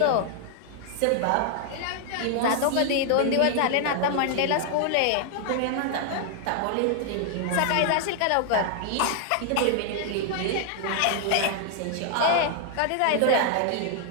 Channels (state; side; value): different; both; correlation 0.00